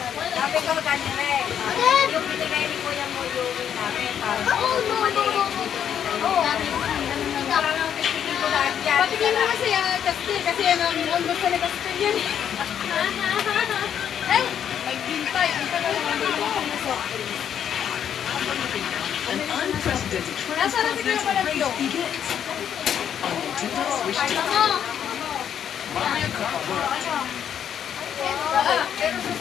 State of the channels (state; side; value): quieter; right; 9.0 dB